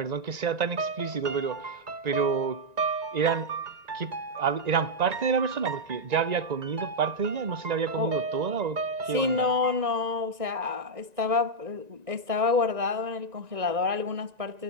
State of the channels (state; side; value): late; left; 1.9 ms